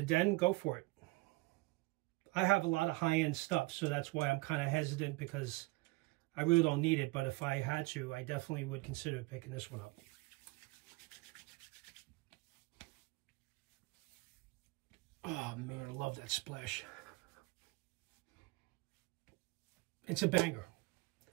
den, go for it. I have a lot of high-end stuff, so that's why I'm kind of hesitant, because I really don't need it. But if I had to, I definitely would consider picking this one up. Oh man, I love that splash. It's a banger.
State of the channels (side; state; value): left; quieter; 23.4 dB